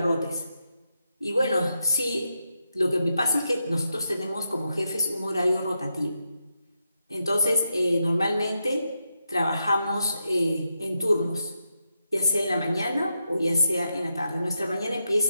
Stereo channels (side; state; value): both; inverted; correlation -0.85